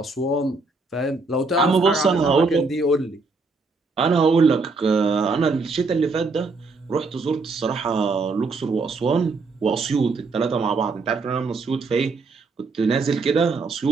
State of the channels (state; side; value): quieter; left; 3.9 dB